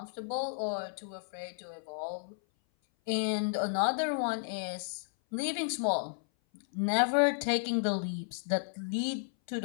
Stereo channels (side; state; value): right; silent; 56 dB below the other